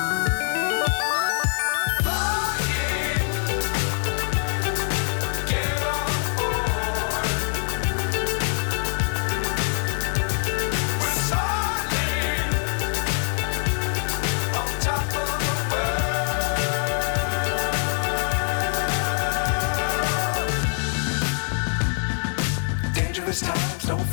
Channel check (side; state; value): right; silent; 55 dB below the other